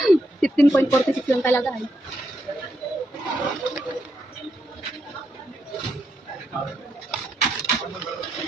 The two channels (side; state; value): both; normal; correlation 0.81